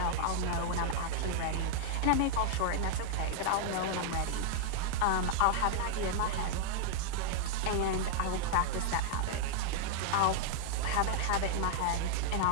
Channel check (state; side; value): different; both; correlation -0.01